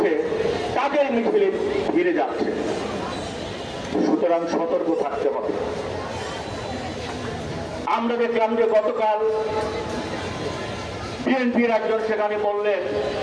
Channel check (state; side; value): identical; both; correlation 1.00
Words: তাদের মিছিলে ফিরে যাচ্ছে। সুতরাং সতর্ক থাকতে হবে। আমরা দেখলাম যে গতকাল বিএনপির একজন সেখানে বললেন